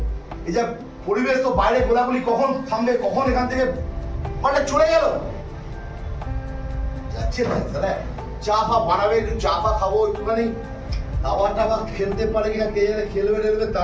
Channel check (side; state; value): both; identical; correlation 1.00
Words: এই যা পরিবেশ তো বাইরে গোলাগুলি কখন থামবে কখন এখান থেকে মানে চলে গেল এত ইচ্ছে নাই তাহলে চা ফা বানাবে, একটু চা ফা খাবো, একটুখানি হাওয়া টাওয়া খেলতে পারে কিনা কে জানে, খেলবে টেলবে তা